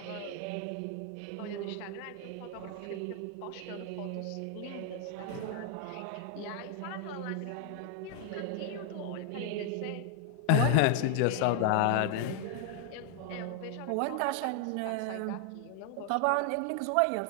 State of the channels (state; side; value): different; both; correlation 0.00